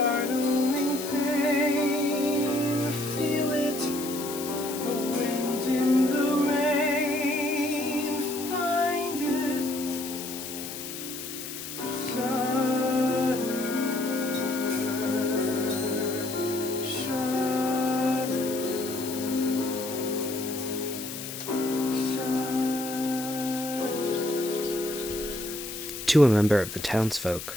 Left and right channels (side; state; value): left; noise; hiss, 9 dB below the sound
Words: pain. Feel it, the wind in the rain. Find it, shudder, shudder, shudder. To a member of the